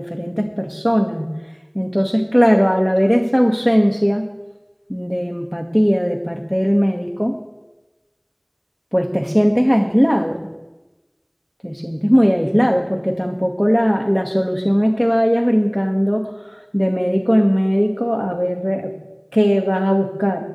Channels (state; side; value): identical; both; correlation 1.00